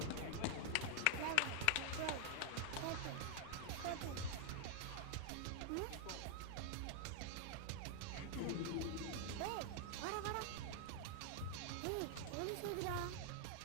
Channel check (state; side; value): different; both; correlation 0.00